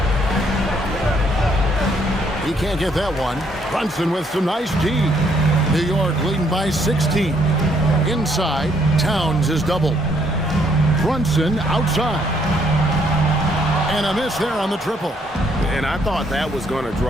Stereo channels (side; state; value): both; normal; correlation 0.69